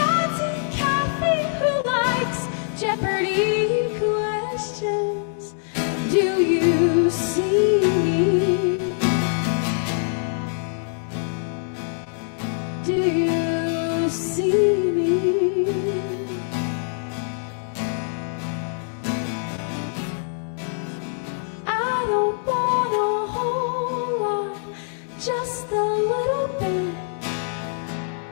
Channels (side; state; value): right; silent; digital silence